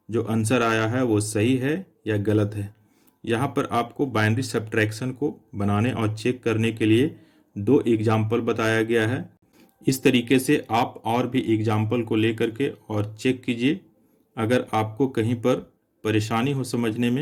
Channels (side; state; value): both; identical; correlation 1.00